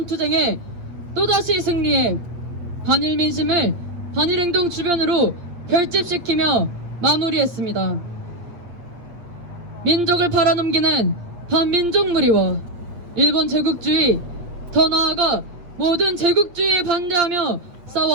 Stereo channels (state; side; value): late; left; 8.5 ms